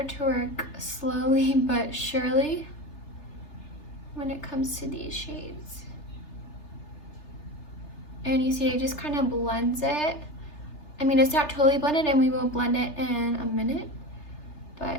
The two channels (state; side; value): late; right; 3.3 ms